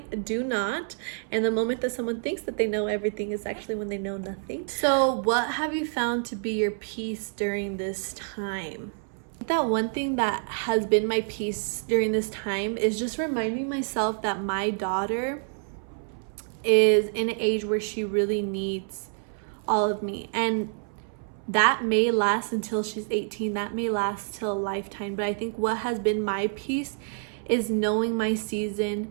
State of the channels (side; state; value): left; silent; 60 dB below the other